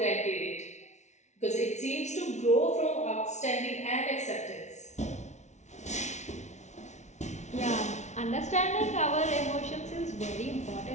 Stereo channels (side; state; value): right; late; 0.33 ms